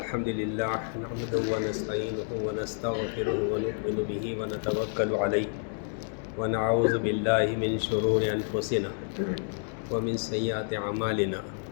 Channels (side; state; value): right; silent; digital silence